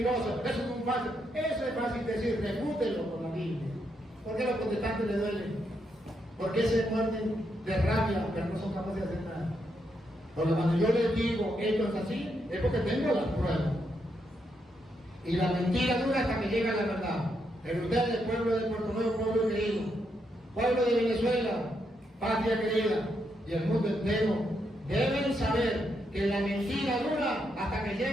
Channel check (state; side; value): normal; both; correlation 0.80